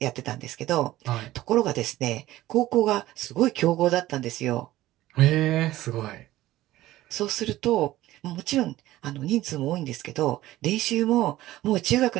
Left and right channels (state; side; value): quieter; left; 15.9 dB